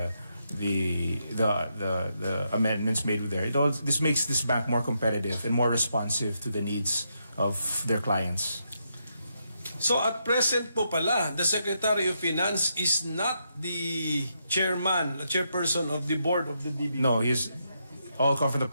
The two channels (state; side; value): inverted; both; correlation -0.81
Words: amendments made with there, this makes this bank more competitive and more responsive to the needs of their clients. So at present po pala, the Secretary of Finance is not the chairperson of the board of the DBP. No, he's all come from the